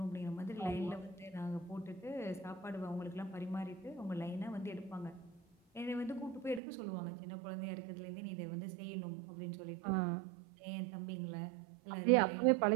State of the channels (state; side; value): drops out; left; at 6.6 s